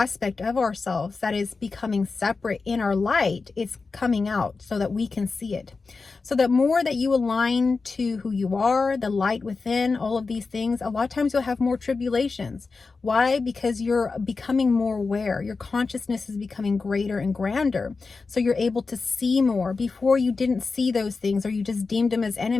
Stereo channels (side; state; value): right; quieter; 4.3 dB